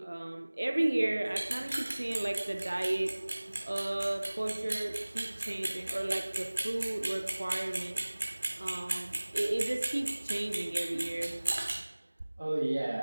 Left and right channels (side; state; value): both; inverted; correlation -1.00